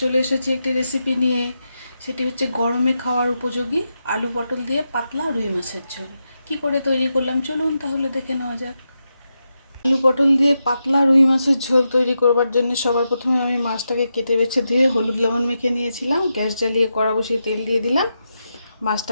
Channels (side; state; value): both; inverted; correlation -0.87